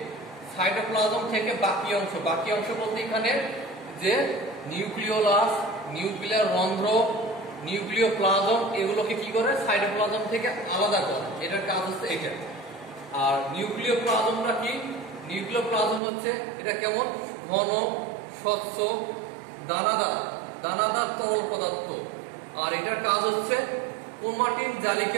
থেকে বাকি অংশ বলতে এখানে যে নিউক্লিওলাস, নিউক্লিয়ার রন্ধ্র, নিউক্লিওপ্লাজম এগুলোকে কি করে? সাইটোপ্লাজম থেকে আলাদা করে। এটার কাজ হচ্ছে এটা। আর নিউক্লিওপ্লাজমটা কি? নিউক্লিওপ্লাজম হচ্ছে এটা কেমন? ঘন, স্বচ্ছ, দানাদার তরল পদার্থ। আর এটার কাজ হচ্ছে ক্রোমাটিন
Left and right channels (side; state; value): left; drops out; at 16.0 s